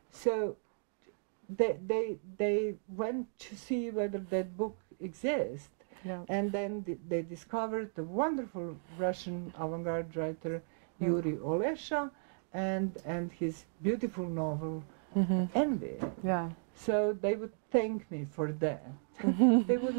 So they went to see whether that book exists, and then they discovered a wonderful Russian avant-garde writer, Yuri Olesha, and his beautiful novel Envy. So they would thank me for that. They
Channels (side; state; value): left; silent; digital silence